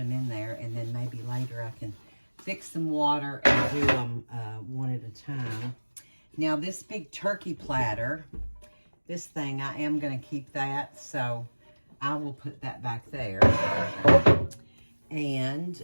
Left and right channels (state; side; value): inverted; both; correlation -1.00